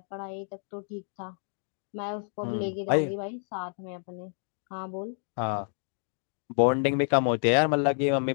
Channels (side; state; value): right; silent; 58 dB below the other